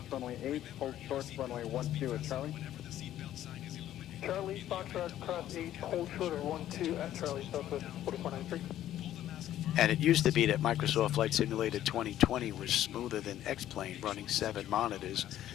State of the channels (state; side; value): quieter; right; 12.4 dB